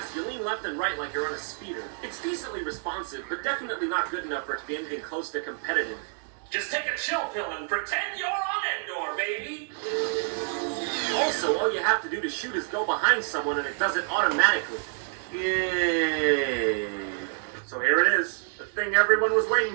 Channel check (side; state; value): left; silent; 59 dB below the other